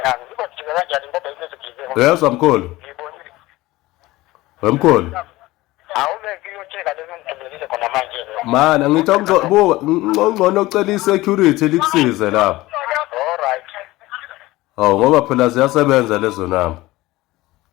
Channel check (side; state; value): right; quieter; 18.7 dB